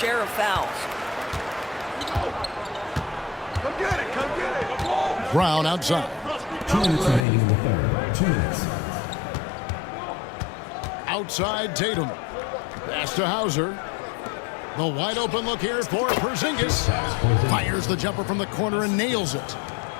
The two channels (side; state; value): right; drops out; at 7.2 s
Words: of fouls. Come get it, come get it. Brown outside. 2 minutes remaining in the third. 2 minutes. Outside Tatum. Pass to Hauser. The wide open look here for Porzingis. Fires the jumper from the corner and nails it.